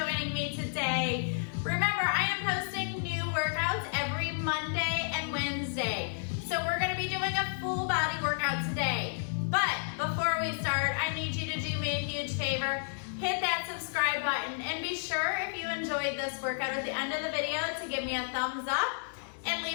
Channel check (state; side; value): silent; right; digital silence